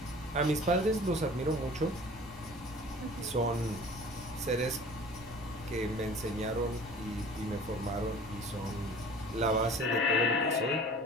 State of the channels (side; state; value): both; normal; correlation 0.45